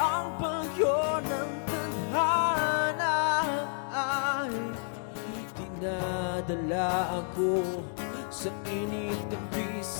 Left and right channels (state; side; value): silent; right; 57 dB below the other